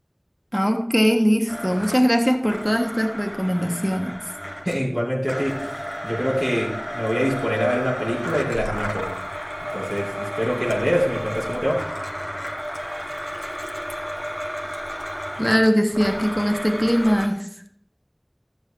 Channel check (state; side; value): identical; both; correlation 1.00